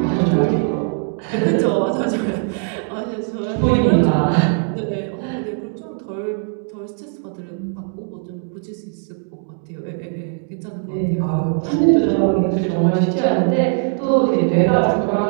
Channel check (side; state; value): left; silent; 56 dB below the other